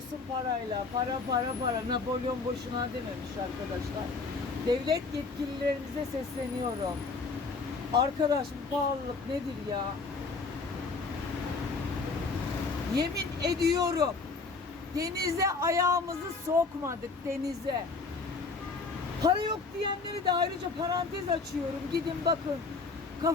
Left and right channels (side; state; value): right; quieter; 4.2 dB